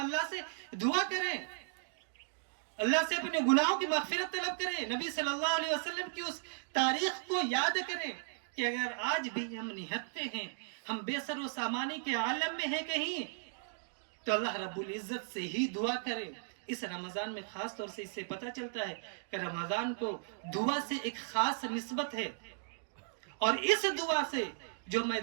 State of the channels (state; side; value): silent; left; digital silence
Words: سے دعا کریں، اللہ سے اپنے گناہوں کی مغفرت طلب کریں، نبی صلی اللہ علیہ وسلم کی اس تاریخ کو یاد کریں کہ اگر آج بھی ہم نہتے ہیں، ہم بے سر و سامانی کے عالم میں ہیں کہیں، تو اللہ رب العزت سے ہی دعا کریں۔ اس رمضان میں خاص طور سے اس سے پتہ چلتا ہے کہ رمضان کو دعا سے ایک خاص نسبت ہے، اور اس دعا سے جو